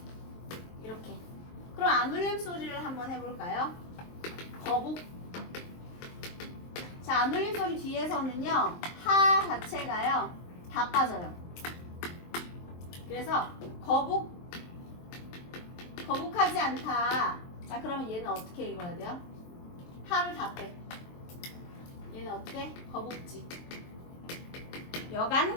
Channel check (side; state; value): right; late; 23 ms